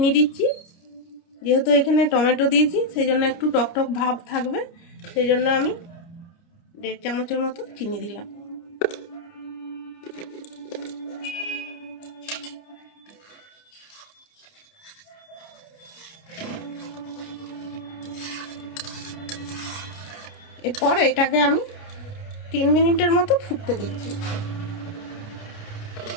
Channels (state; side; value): late; right; 29 ms